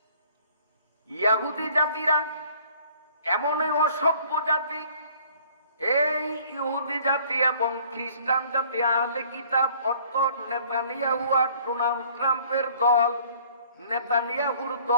ইহুদি জাতিরা এমনই অসভ্য জাতি, এই ইহুদি জাতি এবং খ্রিস্টান জাতি, আহলে কিতাব অর্থাৎ নেতানিয়াহু আর ডোনাল্ড ট্রাম্পের দল। নেতানিয়াহুর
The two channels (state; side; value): inverted; both; correlation -0.56